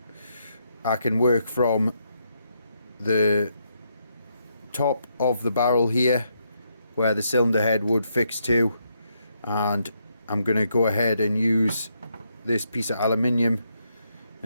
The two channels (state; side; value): inverted; both; correlation -0.78